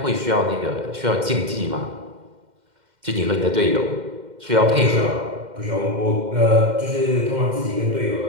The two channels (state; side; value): late; left; 2.1 ms